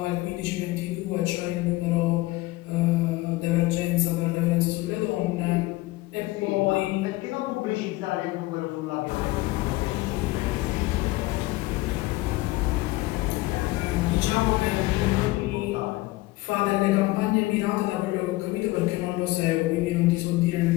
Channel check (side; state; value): right; quieter; 19.6 dB